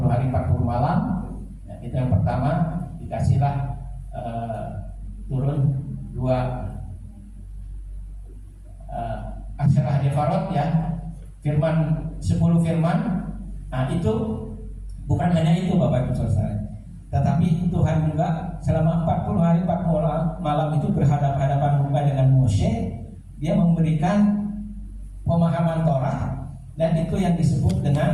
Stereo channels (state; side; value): identical; both; correlation 1.00